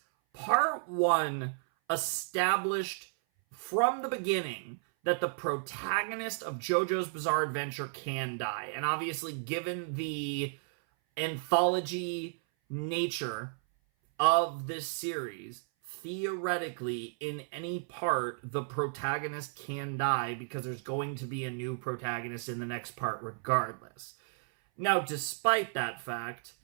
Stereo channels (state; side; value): silent; left; 56 dB below the other